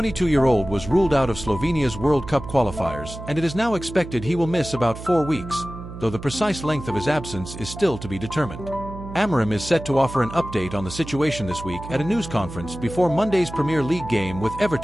was ruled out of Slovenia's World Cup qualifiers, and it is now expected he will miss about 4 weeks, though the precise length of his absence is still to be determined. Amorim is set to offer an update on the situation this week at a news conference before Monday's Premier League game with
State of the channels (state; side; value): noise; right; hum, 11 dB below the sound